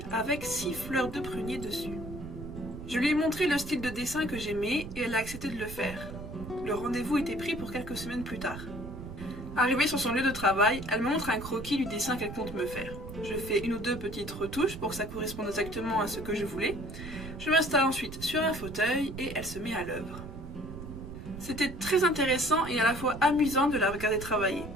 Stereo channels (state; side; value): noise; right; rumble, 11 dB below the sound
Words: avec 6 fleurs de prunier dessus. Je lui ai montré le style de dessin que j'aimais et elle a accepté de le faire. Le rendez-vous était pris pour quelques semaines plus tard. Arrivée sur son lieu de travail, elle me montre un croquis du dessin qu'elle compte me faire. Je fais une ou deux petites retouches pour que ça corresponde exactement à ce que je voulais. Je m'installe ensuite sur un fauteuil et elle se met à l'œuvre. C'était très intéressant et à la fois amusant de la regarder travailler.